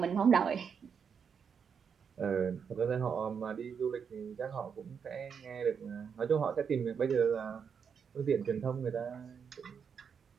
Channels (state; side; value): quieter; left; 6.8 dB